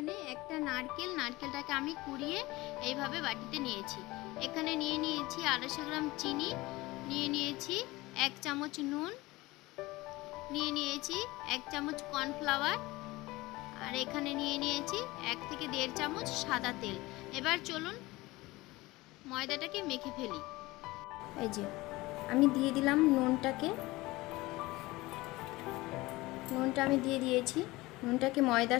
একটা নারকেল। নারকেলটাকে আমি কুড়িয়ে এইভাবে বাটিতে নিয়েছি। এখানে নিয়ে নিয়েছি 250 গ্রাম চিনি, নিয়ে নিয়েছি 1 চামচ নুন, নিয়ে নিয়েছি 1 চামচ কর্নফ্লাওয়ার আর এখানে নিয়ে নিয়েছি 1 থেকে 1.5 চামচ সাদা তেল। এবার চলুন ময়দাটাকে মেখে ফেলি। এই যে আমি দিয়ে দিলাম নুনটাকে, নুনটা আমি দিয়ে দিয়েছি। নুনটাকে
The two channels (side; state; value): right; quieter; 20.4 dB